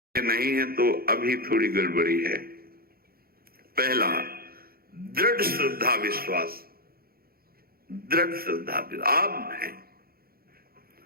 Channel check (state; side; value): late; left; 0.44 ms